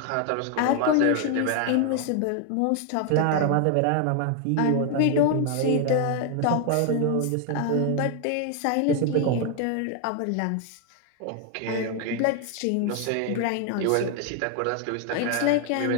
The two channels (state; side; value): different; both; correlation 0.00